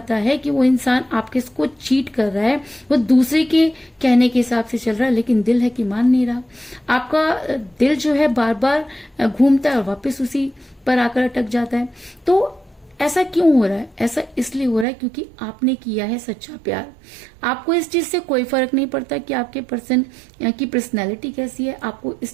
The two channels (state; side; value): drops out; left; at 14.9 s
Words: है कि वो इंसान आपके को चीट कर रहा है, वो दूसरे के कहने के हिसाब से चल रहा है, लेकिन दिल है कि मान नहीं रहा। आपका दिल जो है बार बार घूमता है और वापस उसी पर आकर अटक जाता है। तो ऐसा क्यों हो रहा है? ऐसा इसलिए हो रहा है क्योंकि आपने किया है सच्चा प्यार। आपको इस चीज से कोई फर्क नहीं पड़ता कि आपके पर्सन की पर्सनैलिटी कैसी है, आपको